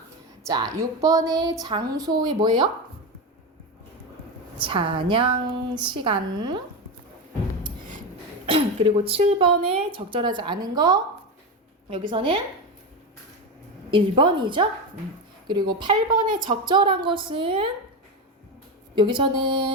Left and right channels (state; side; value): normal; both; correlation 0.16